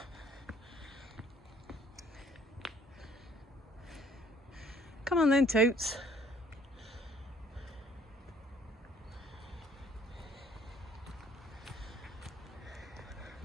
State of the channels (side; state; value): both; normal; correlation 0.60